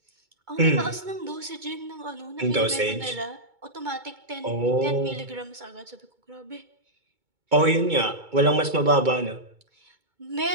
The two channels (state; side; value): late; left; 2.2 ms